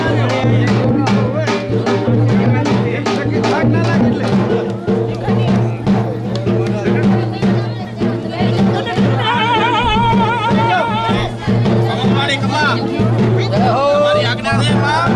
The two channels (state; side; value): identical; both; correlation 1.00